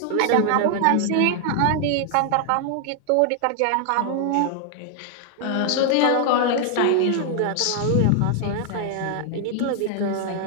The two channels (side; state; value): both; different; correlation 0.00